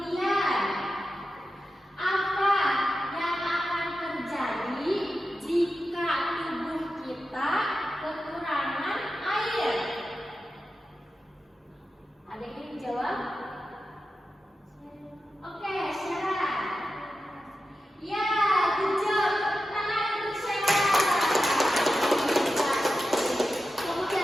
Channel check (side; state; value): both; normal; correlation 0.91